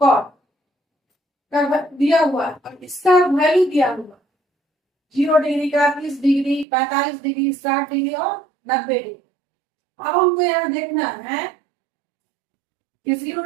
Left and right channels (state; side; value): drops out; left; at 6.7 s